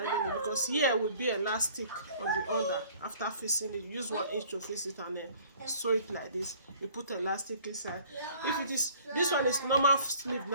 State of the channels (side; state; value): both; inverted; correlation -0.53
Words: it, because here will be elastic on the under. After fixing it, you use 1 inch to fix it and then sew it like this. You put elastic inside. If it is, this one is normal sleeve